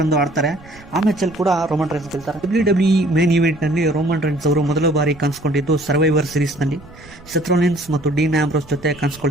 ಆಡ್ತಾರೆ. ಆ ಮ್ಯಾಚಲ್ಲಿ ಕೂಡ ರೋಮನ್ ರೈನ್ಸ್ ಗೆಲ್ತಾರೆ. WWE ಮೇನ್ ಇವೆಂಟ್ನಲ್ಲಿ ರೋಮನ್ ರೈನ್ಸ್ ಅವರು ಮೊದಲ ಬಾರಿ ಕಾಣಿಸ್ಕೊಂಡಿದ್ದು ಸರ್ವೈವರ್ ಸೀರೀಸ್ನಲ್ಲಿ ಸೆತ್ ರಾಲಿನ್ಸ್ ಮತ್ತು ಡೀನ್ ಆಂಬ್ರೋಸ್ ಜೊತೆ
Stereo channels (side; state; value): right; noise; rumble, 23 dB below the sound